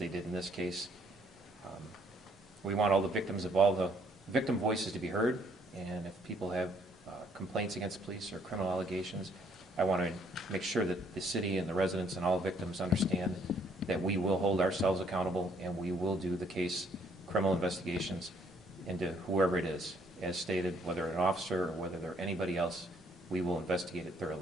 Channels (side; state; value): both; normal; correlation 0.66